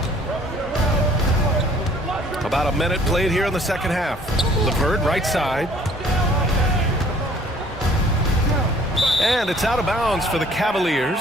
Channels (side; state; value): both; normal; correlation 0.57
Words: About a minute played here in the second half. LeVert right side. And it's out of bounds for the Cavaliers